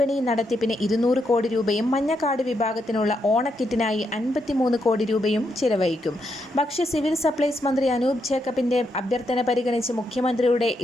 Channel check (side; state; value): both; normal; correlation 0.80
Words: നടത്തിപ്പിന് 200 കോടി രൂപയും മഞ്ഞക്കാർഡ് വിഭാഗത്തിനുള്ള ഓണക്കിറ്റിനായി 53 കോടി രൂപയും ചിലവഴിക്കും. ഭക്ഷ്യ സിവിൽ സപ്ലൈസ് മന്ത്രി അനൂപ് ജേക്കബിന്റെ അഭ്യർത്ഥന പരിഗണിച്ച് മുഖ്യമന്ത്രിയുടെ